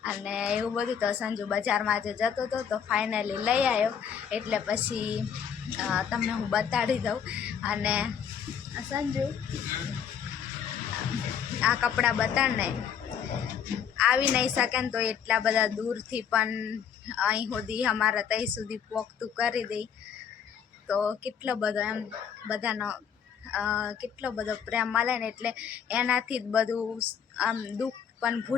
અને એવું બધું. તો સંજુ બજારમાં જે જતો હતો તો ફાઇનલી લઈ આવ્યો એટલે પછી તમને હું બતાડી દઉં. અને સંજુ આ કપડાં બતાડને આવી નહીં શકે ને તો એટલા બધા દૂરથી પણ અહીં સુધી અમારા ત્યાં સુધી પોખતું કરી દઈ તો કેટલો બધો એમ બધાનો કેટલો બધો પ્રેમ મળે ને એટલે એનાથી જ બધું આમ દુઃખ પણ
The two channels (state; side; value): quieter; right; 7.9 dB